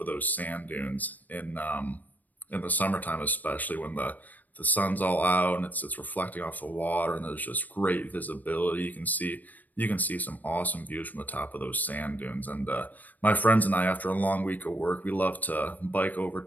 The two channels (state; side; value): late; right; 0.083 ms